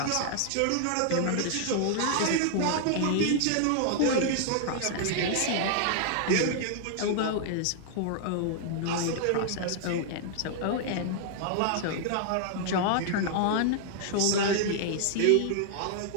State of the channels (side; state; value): both; different; correlation 0.00